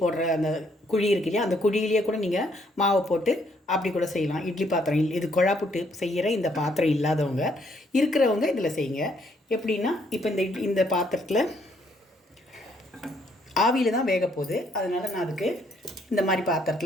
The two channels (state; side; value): normal; both; correlation 0.69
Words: போடுற அந்த குழி இருக்கு இல்லையா, அந்த குழியிலேயே கூட நீங்கள் மாவை போட்டு அப்படி கூட செய்யலாம். இட்லி பாத்திரம் இது கொழா புட்டு செய்கிற இந்த பாத்திரம் இல்லாதவங்க இருக்கிறவங்க இதில் செய்யுங்க. எப்படின்னா, இப்போ இந்த பாத்திரத்தில் ஆவியில் தான் வேக போகுது. அதனால் நான் அதுக்கு இந்த மாதிரி